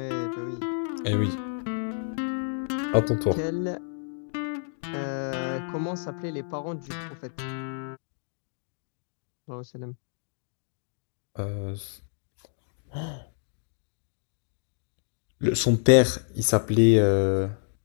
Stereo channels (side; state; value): right; silent; digital silence